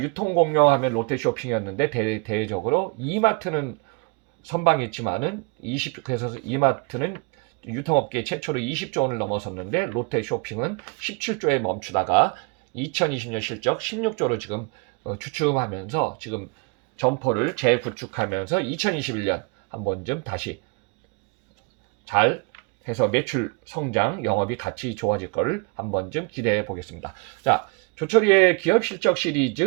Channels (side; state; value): left; quieter; 30.9 dB